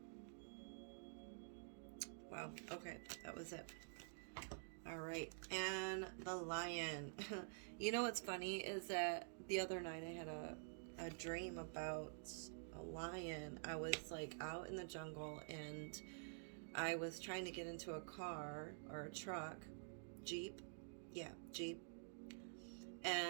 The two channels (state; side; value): silent; left; digital silence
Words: Wow, okay, that was it. All right, and the lion. You know what's funny is that the other night I had a dream about a lion. I was like out in the jungle and I was trying to get into a car or a truck, Jeep. Yeah, Jeep.